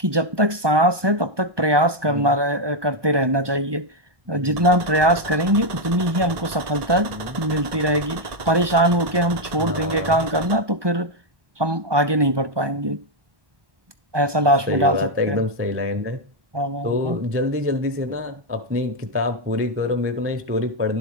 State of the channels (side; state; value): left; late; 1.2 ms